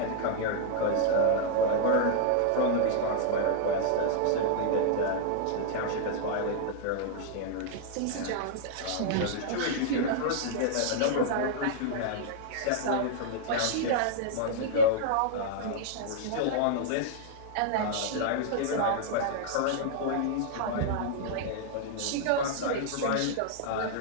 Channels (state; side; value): different; both; correlation -0.01